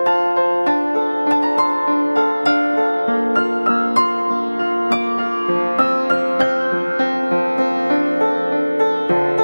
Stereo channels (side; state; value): both; inverted; correlation -1.00